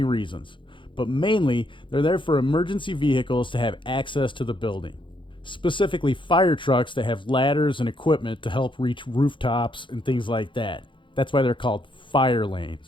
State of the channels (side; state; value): right; late; 0.24 ms